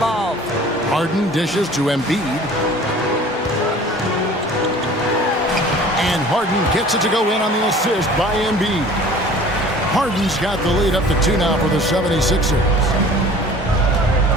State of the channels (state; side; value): normal; both; correlation 0.46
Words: Harden dishes to Embiid. And Harden gets it to go in on the assist by Embiid. Harden's got the lead up to 2 now for the 76ers.